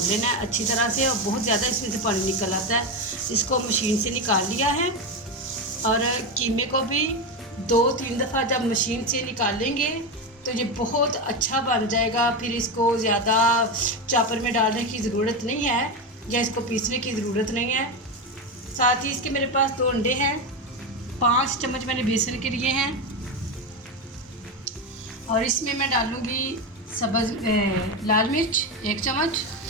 लेना है अच्छी तरह से, और बहुत ज़्यादा इसमें से पानी निकल आता है। इसको मशीन से निकाल लिया है और कीमे को भी 2-3 दफ़ा जब मशीन से निकाल लेंगे तो ये बहुत अच्छा बन जाएगा। फिर इसको ज़्यादा चॉपर में डालने की ज़रूरत नहीं है या इसको पीसने की ज़रूरत नहीं है। साथ ही इसके मेरे पास 2 अंडे हैं, 5 चम्मच मैंने बेसन के लिए हैं और इसमें मैं डालूँगी लाल मिर्च 1 चम्मच,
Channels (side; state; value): both; normal; correlation 0.14